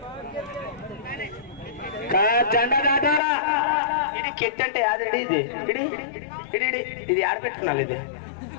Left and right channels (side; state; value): right; drops out; at 3.2 s